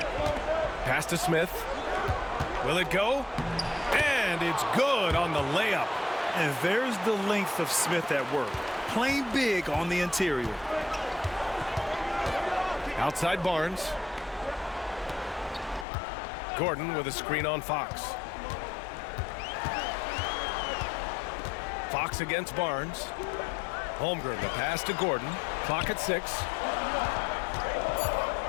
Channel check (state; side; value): drops out; right; at 15.9 s